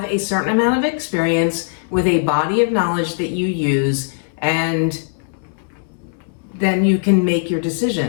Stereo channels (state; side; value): silent; right; 66 dB below the other